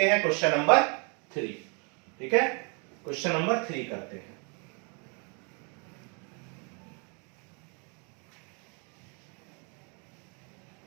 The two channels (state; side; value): quieter; left; 35.3 dB